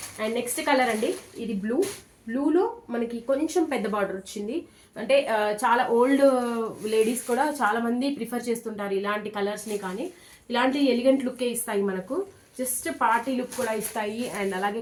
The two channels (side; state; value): both; identical; correlation 1.00